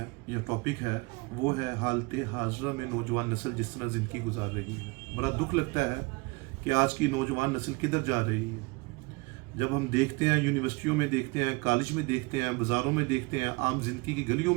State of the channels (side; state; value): left; quieter; 26.6 dB